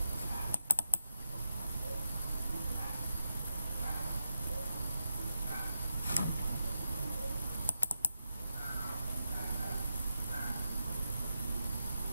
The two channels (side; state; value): both; inverted; correlation -0.87